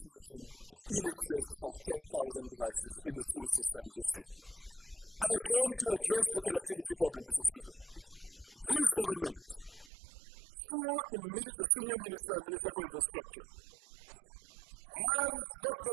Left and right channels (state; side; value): drops out; left; at 9.9 s